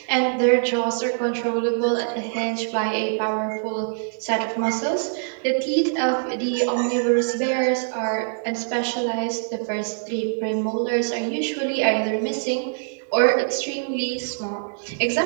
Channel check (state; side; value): silent; left; digital silence